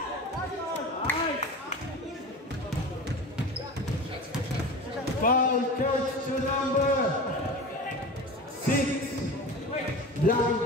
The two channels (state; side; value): normal; both; correlation 0.32